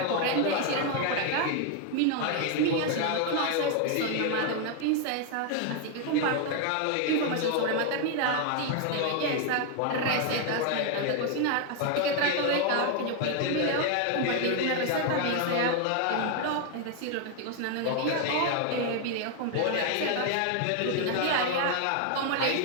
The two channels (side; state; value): both; different; correlation 0.01